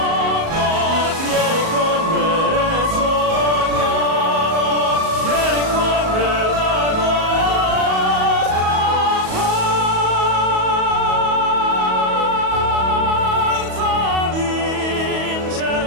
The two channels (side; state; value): left; late; 37 ms